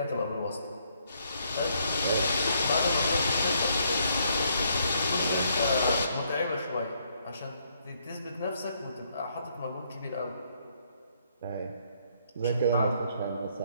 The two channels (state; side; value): inverted; both; correlation -0.71